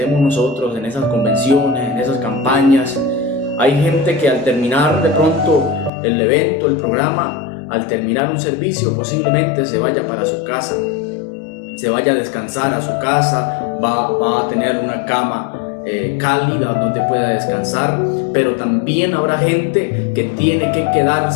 nosotros, en esas convenciones, en esas campañas, hay gente que al terminar de pronto el evento, el programa, al terminar un servicio posiblemente se vaya para su casa, se vaya a descansar a su casa, va a tener una cama cálida donde pueda descansar, pero también habrá gente que tiene que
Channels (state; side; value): drops out; right; at 5.9 s